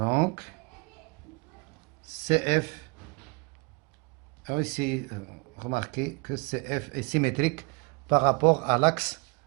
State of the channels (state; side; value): quieter; left; 30.2 dB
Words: CF, ici, remarquez que CF est symétrique par rapport à l'axe